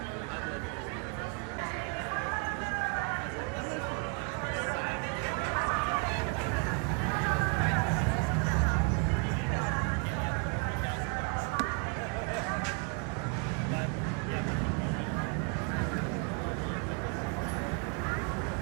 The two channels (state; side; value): quieter; left; 35.7 dB